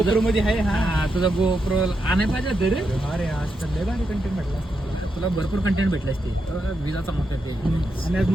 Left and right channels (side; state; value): both; normal; correlation 0.84